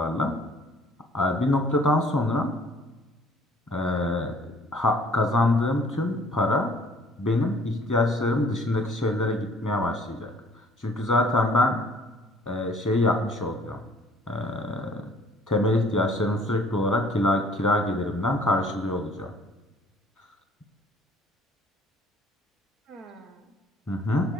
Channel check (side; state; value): both; normal; correlation 0.56